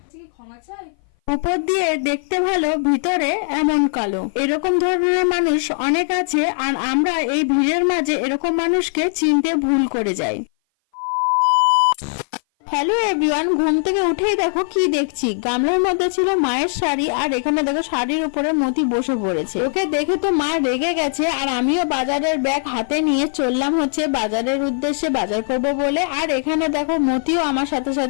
ক্ষমা চাই। উপর দিয়ে দেখতে ভালো, ভিতরে এমন কালো। এরকম ধরনের মানুষ অনেক আছে, আর আমরা এই ভিড়ের মাঝে এরকম মানুষকে চিনতে ভুল করে যাই। হ্যালো এভরিওয়ান, ঘুম থেকে উঠেই দেখো কি দেখছি, গামলার মধ্যে ছিল মায়ের শাড়ি, আর এখানে দেখো শাড়ির উপরে মতি বসে পড়েছে। ওকে দেখে তো মা রেগে গেছে, আর আমিও বাজারের ব্যাগ হাতে নিয়ে চললাম হচ্ছে বাজারের উদ্দেশ্যে, বাজার করব বলে। আর এখানে দেখো মতিও আমার সাথে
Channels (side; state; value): right; silent; 58 dB below the other